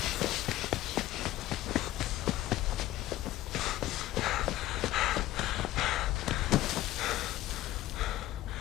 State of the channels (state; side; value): quieter; right; 15.3 dB